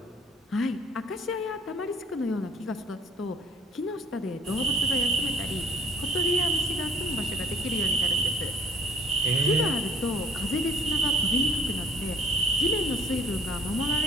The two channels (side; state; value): both; normal; correlation 0.54